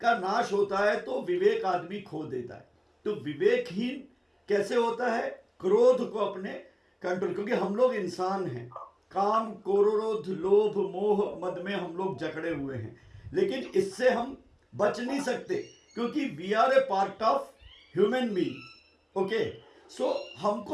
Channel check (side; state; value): both; identical; correlation 1.00